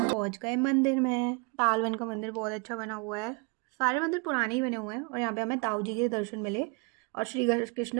पहुँच गए मंदिर में। तालवन का मंदिर बहुत अच्छा बना हुआ है। सारे मंदिर पुराने ही बने हुए हैं, और यहाँ पे हमें ताऊ जी के दर्शन मिले, और श्री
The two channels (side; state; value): left; quieter; 32.1 dB